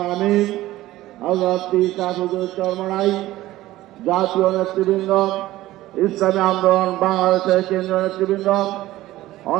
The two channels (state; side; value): quieter; left; 16.0 dB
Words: আমির হযরত পীর শাফিউদ্দৌলা চরমনাই, জাতীয় নেতৃবৃন্দ, ইসলামী আন্দোলন বাংলাদেশের কেন্দ্রীয় নেতৃবৃন্দ,